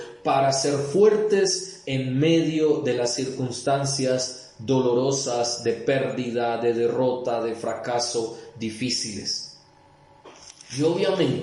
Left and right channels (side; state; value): both; identical; correlation 1.00